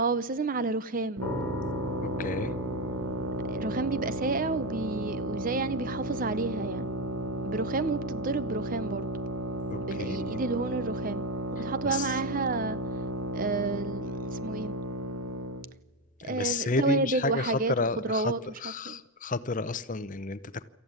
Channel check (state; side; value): normal; both; correlation 0.11